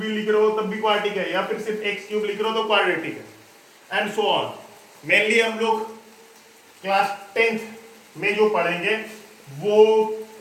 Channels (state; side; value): identical; both; correlation 1.00